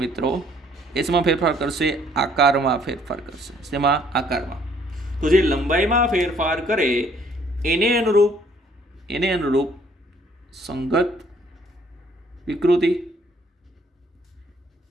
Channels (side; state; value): both; normal; correlation 0.62